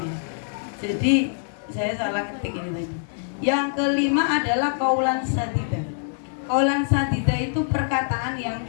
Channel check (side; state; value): right; silent; 60 dB below the other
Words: ya. Jadi saya salah ketik ini tadi. Yang kelima adalah qaulan sadida. Qaulan sadida itu perkataan yang